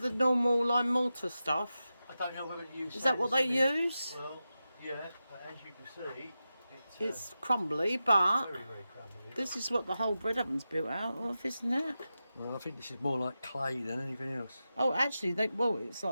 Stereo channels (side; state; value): both; inverted; correlation -0.92